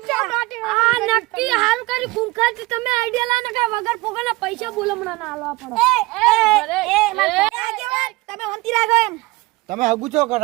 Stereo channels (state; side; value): quieter; left; 21.6 dB